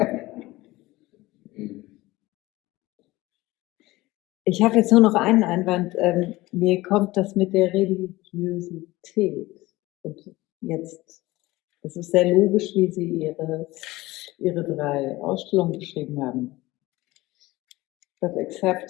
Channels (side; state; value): right; quieter; 19.2 dB